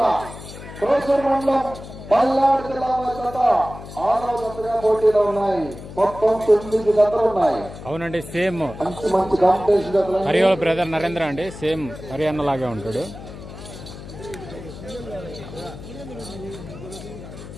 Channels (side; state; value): left; noise; hum, 13 dB below the sound